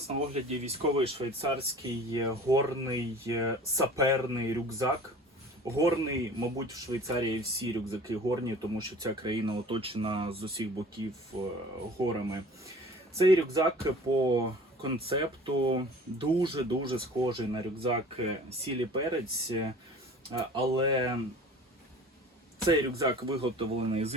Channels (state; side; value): normal; both; correlation 0.44